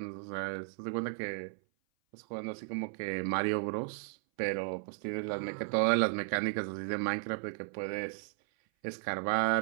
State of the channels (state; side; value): silent; left; 55 dB below the other